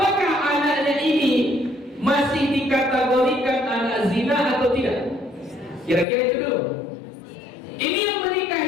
anaknya ini masih dikategorikan anak zina atau tidak? Kira-kira itu dulu. Ini yang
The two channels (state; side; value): drops out; right; at 6.1 s